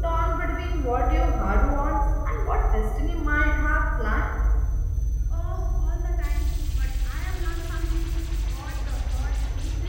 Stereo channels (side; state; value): both; identical; correlation 1.00